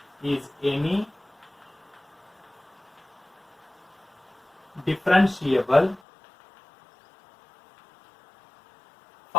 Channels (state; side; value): drops out; right; at 6.0 s